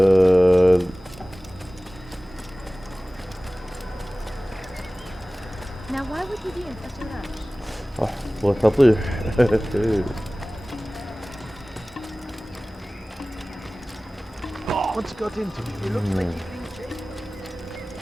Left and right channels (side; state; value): both; normal; correlation 0.98